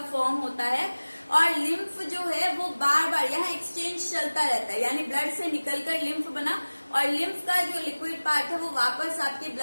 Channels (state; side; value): inverted; both; correlation -1.00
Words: फॉर्म होता है, और लिम्फ जो है वो बार बार यहाँ एक्सचेंज चलता रहता है, यानी ब्लड से निकलकर लिम्फ बना और लिम्फ का जो लिक्विड पार्ट है वो वापस आपके